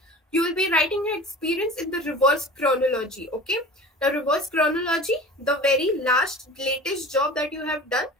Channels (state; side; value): normal; both; correlation 0.39